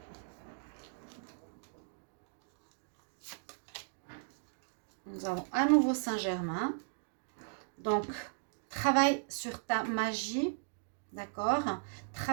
Nous avons à nouveau Saint-Germain. Donc, travaille sur ta magie. D'accord?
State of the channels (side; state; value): left; silent; digital silence